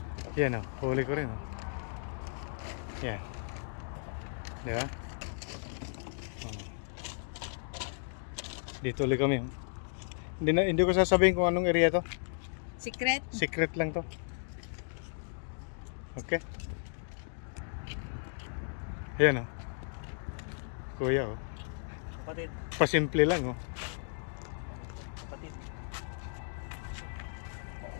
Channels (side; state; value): right; silent; digital silence